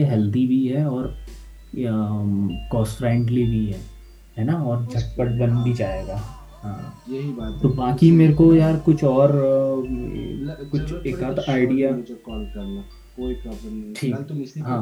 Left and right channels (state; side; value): identical; both; correlation 1.00